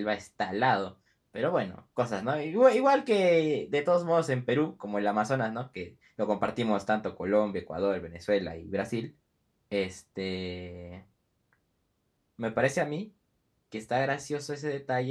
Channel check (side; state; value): both; identical; correlation 1.00